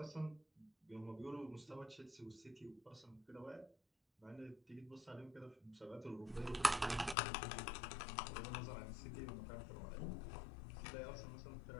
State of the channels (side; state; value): right; drops out; at 7.2 s